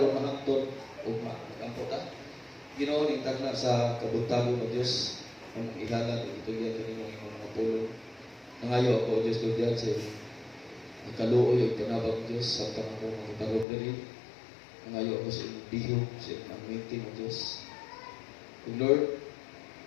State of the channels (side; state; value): right; drops out; at 13.7 s